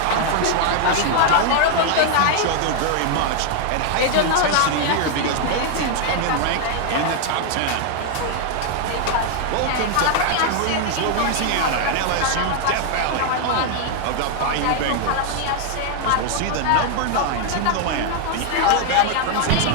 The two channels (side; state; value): both; different; correlation 0.00